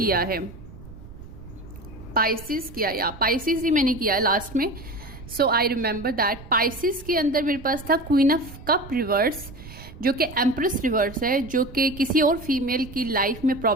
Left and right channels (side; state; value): right; noise; rumble, 16 dB below the sound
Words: है, पाइसिस ही मैंने किया है लास्ट में। सो आई रिमेंबर दैट पाइसिस के अंदर मेरे पास था क्वीन ऑफ कप रिवर्स, जो कि एम्प्रेस रिवर्स है, जो कि किसी और फीमेल की लाइफ में